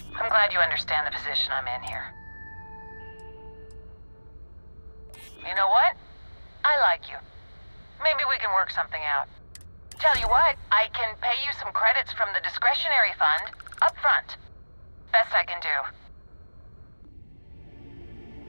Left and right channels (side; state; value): both; inverted; correlation -1.00